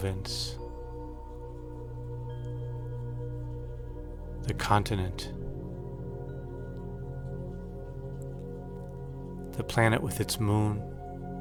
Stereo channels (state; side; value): identical; both; correlation 1.00